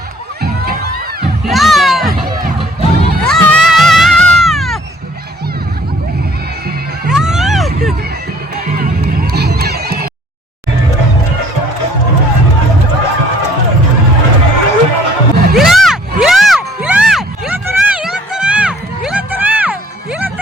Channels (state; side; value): normal; both; correlation 0.56